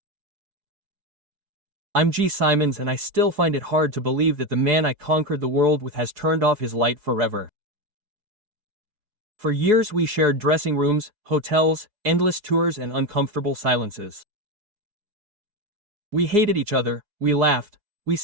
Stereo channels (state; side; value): late; left; 4.7 ms